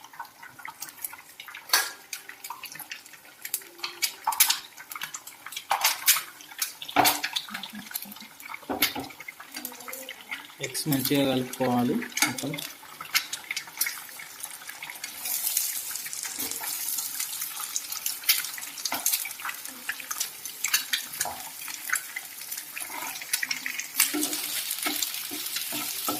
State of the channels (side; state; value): both; identical; correlation 1.00